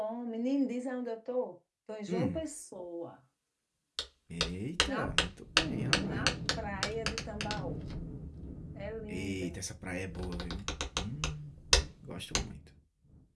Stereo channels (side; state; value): both; identical; correlation 1.00